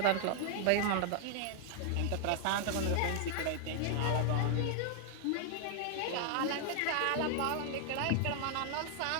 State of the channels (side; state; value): both; different; correlation 0.00